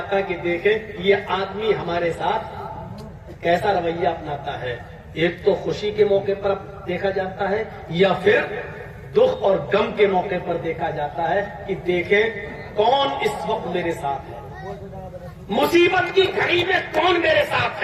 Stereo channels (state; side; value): identical; both; correlation 1.00